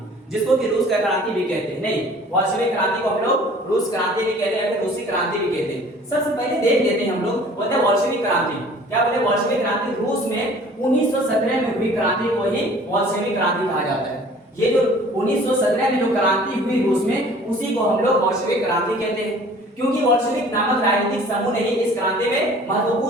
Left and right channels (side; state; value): both; normal; correlation 0.50